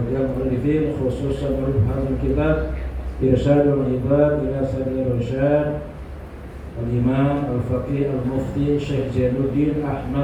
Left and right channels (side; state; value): both; identical; correlation 1.00